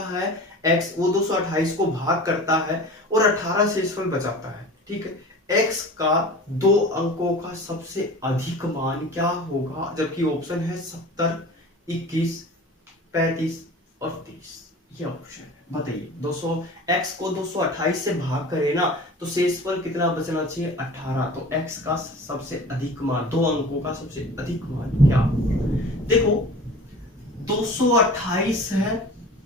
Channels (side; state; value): both; normal; correlation 0.39